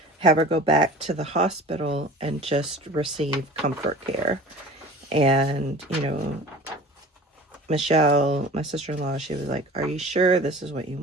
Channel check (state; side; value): normal; both; correlation 0.41